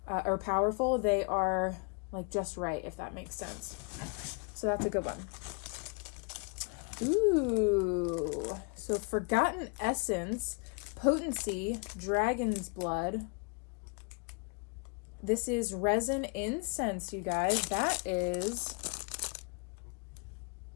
or powerful. They are like just right, if that makes sense. So that's a good one. Ooh, so Forgotten Essence, Potency, Dragon's Blood. This is resin incense, you guys. That is,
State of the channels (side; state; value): right; quieter; 34.3 dB